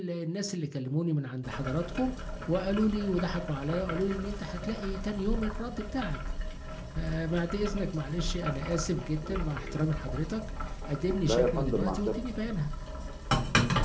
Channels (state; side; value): identical; both; correlation 1.00